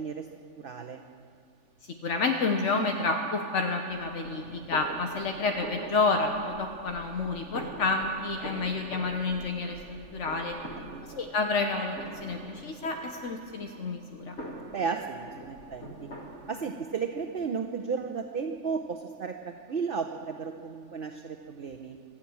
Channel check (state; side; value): late; right; 3.4 ms